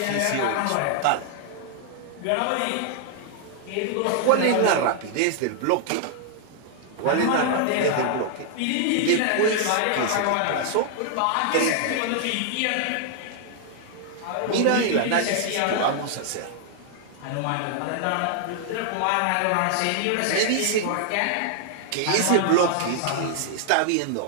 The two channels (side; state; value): both; different; correlation 0.00